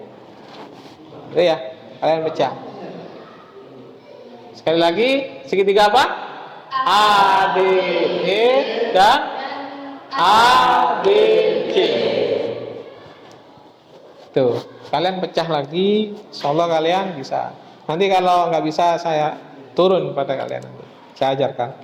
Itu ya, kalian pecah. Sekali lagi, segitiga apa? A, B, E dan A, B, C. Tuh, kalian pecah lagi, insyaallah kalian bisa. Nanti kalau nggak bisa, saya turun pada kalian nanti. Saya ajarkan.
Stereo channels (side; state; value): both; identical; correlation 1.00